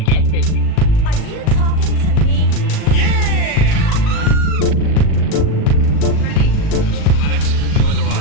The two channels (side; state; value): right; late; 38 ms